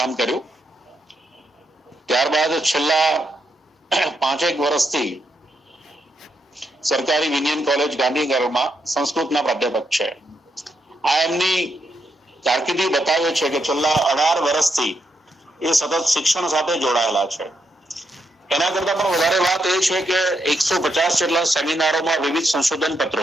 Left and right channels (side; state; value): both; normal; correlation 0.80